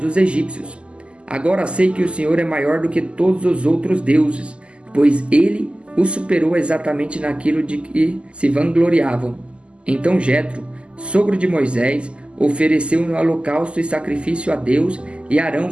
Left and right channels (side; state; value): left; late; 0.053 ms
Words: egípcios. Agora sei que o Senhor é maior do que todos os outros deuses, pois ele o superou exatamente naquilo de que se vangloriavam. Então Jetro, sogro de Moisés, ofereceu um holocausto e sacrifício a Deus, e Arão